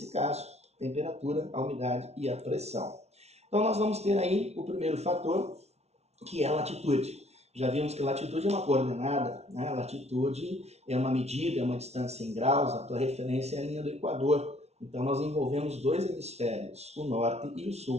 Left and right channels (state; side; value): late; left; 0.31 ms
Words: caso, temperatura, a umidade e a pressão. Então nós vamos ter aí o primeiro fator, que é a latitude. Já vimos que latitude é uma coordenada, né? Latitude é uma medida, é uma distância em graus, a tua referência é a linha do Equador. Então nós envolvemos dois hemisférios, o norte e o